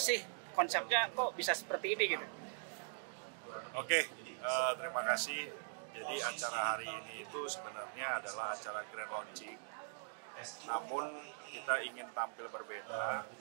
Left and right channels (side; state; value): left; silent; digital silence